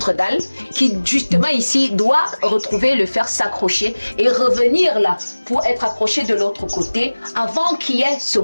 dalle, qui justement ici doit retrouver le fer s'accrocher et revenir là pour être accroché de l'autre côté avant qu'il y ait ce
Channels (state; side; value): inverted; both; correlation -1.00